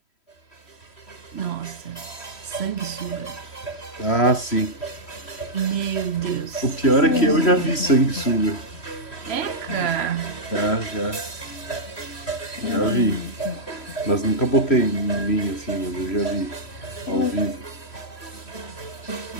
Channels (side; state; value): right; late; 3.1 ms